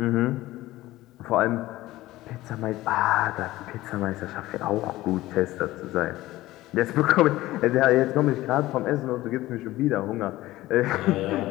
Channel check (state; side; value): quieter; right; 16.9 dB